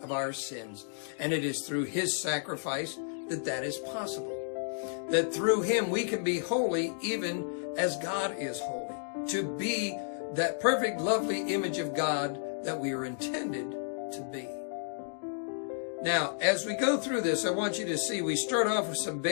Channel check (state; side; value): silent; right; digital silence